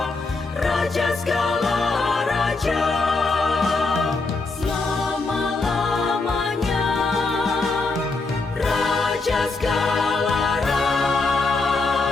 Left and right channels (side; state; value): right; quieter; 3.7 dB